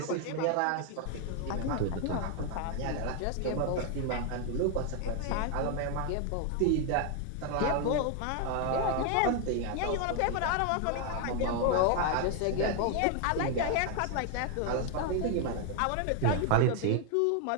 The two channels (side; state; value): both; different; correlation 0.00